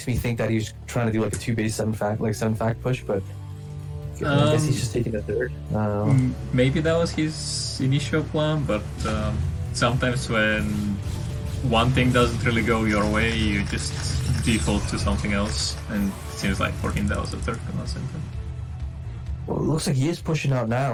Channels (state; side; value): identical; both; correlation 1.00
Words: me think that he's trying to do like a 2-base 7-fact push, but I guess he's just taking a third. Maybe that was his initial plan, but sometimes when one thing doesn't really go your way, you just default to something else, and it seems like for him that was the third command center. Well, it looks like he is pushing out